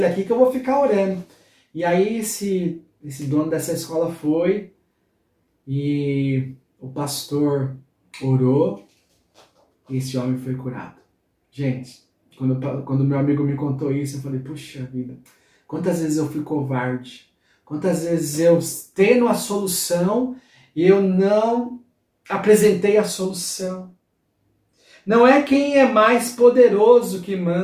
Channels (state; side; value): identical; both; correlation 1.00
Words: aqui que eu vou ficar orando. E aí esse dono dessa escola foi e o pastor orou e esse homem foi curado. Gente, quando meu amigo me contou isso, eu falei, puxa vida, quantas vezes eu fui covarde, quantas vezes eu tendo a solução e eu não apresentei a solução. Não é quem é mais poderoso que